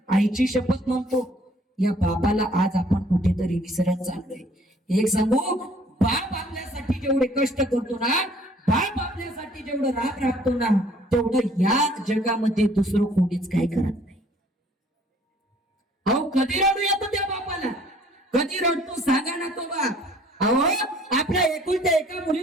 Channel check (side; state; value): both; normal; correlation 0.58